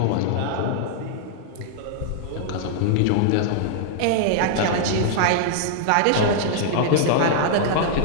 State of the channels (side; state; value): both; different; correlation -0.01